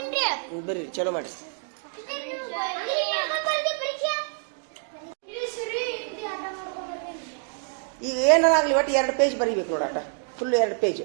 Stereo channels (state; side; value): silent; left; 60 dB below the other